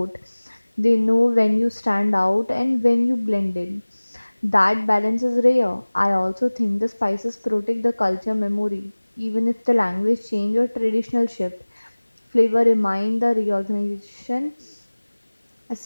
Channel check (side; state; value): both; inverted; correlation -1.00